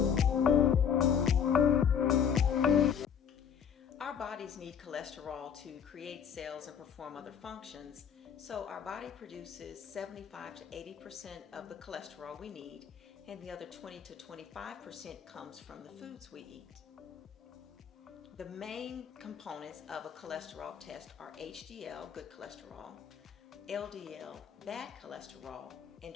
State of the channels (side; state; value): right; quieter; 7.8 dB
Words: Our bodies need cholesterol to create cells and perform other functions, so our body produces 75 to 80% of the cholesterol we need, and the other 20 to 25% comes from the foods we eat. The main components of a cholesterol test are HDL, good cholesterol, LDL, bad cholesterol, and